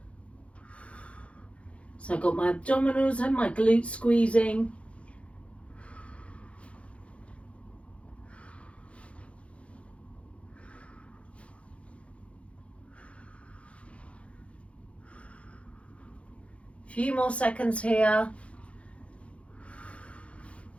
So I've got my abdominals and my glutes squeezing. Few more seconds here.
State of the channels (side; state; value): right; late; 0.062 ms